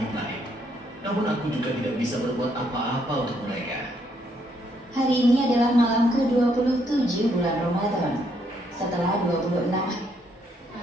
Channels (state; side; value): normal; both; correlation 0.72